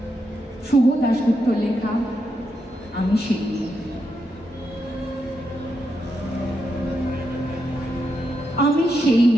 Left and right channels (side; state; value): both; normal; correlation 0.83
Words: শুভ দাশগুপ্ত লেখা আমি সেই মেয়ে। আমি সেই